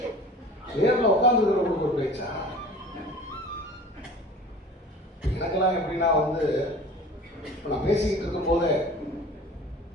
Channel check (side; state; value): both; normal; correlation 0.42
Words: நேரில் உட்காந்துருக்கிறவங்களுக்கு ஒரு பேச்சா? எனக்கெல்லாம் எப்படின்னா வந்து, இப்போ நான் பேசிக்கிட்டு இருக்கும் போதே,